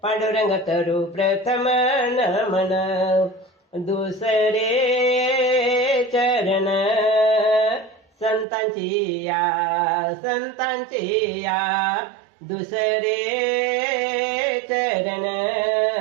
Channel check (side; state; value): left; drops out; at 8.5 s